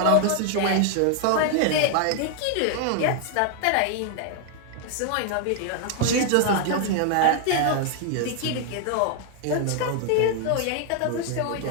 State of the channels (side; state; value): both; different; correlation 0.00